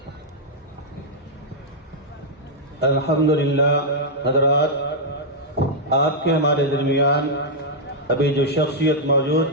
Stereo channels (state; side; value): normal; both; correlation -0.06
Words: الحمدللہ حضرات، آپ کے ہمارے درمیان ابھی جو شخصیت موجود